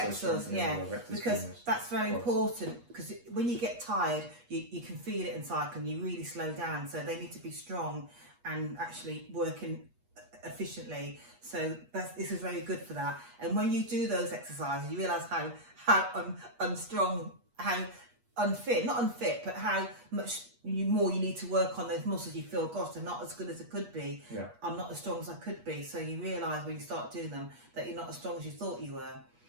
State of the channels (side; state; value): left; late; 8.4 ms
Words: yeah. Because femurs. that's very important. Because when you get tired, you can feel it in cycling. You really slow down, so they need to be strong and actually working efficiently. So this is very good for that. And when you do those exercises, you realise how unstrong, how not unfit, but how much more you need to work on those muscles. You feel, gosh, they're not as good as it could be. Yeah. I'm not as strong as I could be. So you realise when you start doing them that you're not as strong as you thought you were.